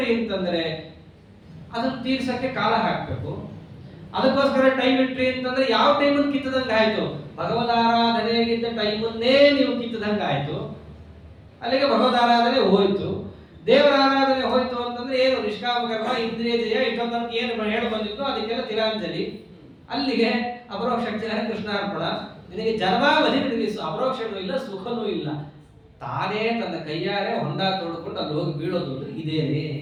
ಅಂತಂದ್ರೆ ಅದನ್ನ ತೀರ್ಸಕ್ಕೆ ಕಾಲ ಹಾಕ್ಬೇಕು. ಅದಕ್ಕೋಸ್ಕರ ಟೈಮ್ ಇಟ್ರಿ ಅಂತಂದ್ರೆ ಯಾವ ಟೈಮನ್ನು ಕಿತ್ತದಂಗೆ ಆಯ್ತು? ಭಗವದಾರಾಧನೆಗಿದ್ದ ಟೈಮನ್ನೇ ನೀವು ಕಿತ್ತದಂಗೆ ಆಯ್ತು. ಅಲ್ಲಿಗೆ ಭಗವದಾರಾಧನೆ ಹೋಯ್ತು. ದೇವರ ಆರಾಧನೆ ಹೋಯ್ತು ಅಂತಂದ್ರೆ ಏನು? ನಿಷ್ಕಾಮ ಕರ್ಮ, ಇಂದ್ರಿಯ ಜಯ, ಇಷ್ಟೊಂದು ಏನು ಹೇಳಿ ಬಂದಿತ್ತು ಅದಕ್ಕೆಲ್ಲ ತಿಲಾಂಜಲಿ. ಅಲ್ಲಿಗೆ ಅಪರೋಕ್ಷ ಜ್ಞಾನ ಕೃಷ್ಣಾರ್ಪಣ. ನಿನಗೆ ಜನ್ಮಾವಧಿ ನಿನಗೆ ಅಪರೋಕ್ಷನೂ ಇಲ್ಲ, ಸುಖನೂ ಇಲ್ಲ. ತಾನೇ ತನ್ನ ಕೈಯಾರೆ ಹೊಂಡ ತೋಡ್ಕೊಂಡು ಅಲ್ಲಿ ಹೋಗಿ ಬೀಳೋದು ಇದೇನೆ.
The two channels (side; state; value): both; identical; correlation 1.00